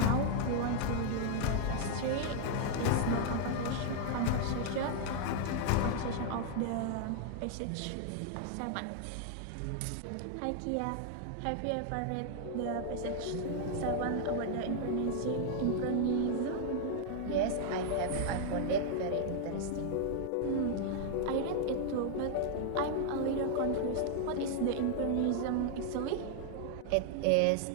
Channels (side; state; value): both; different; correlation 0.00